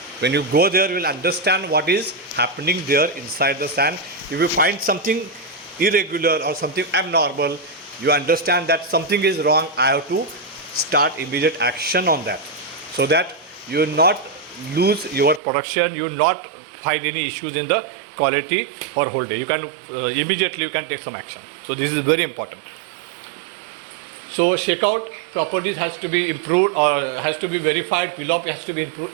When you go there, you will understand what is happening there inside the sand. If you find something irregular or something abnormal, you understand that something is wrong. I have to start immediate action on that, so that you will not lose your production, you will not find any issues in the quality for whole day. You can immediately you can take some action. So this is very important. So shakeout properties has to be improved or has to be verified, PLOP has to be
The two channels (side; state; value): left; drops out; at 15.4 s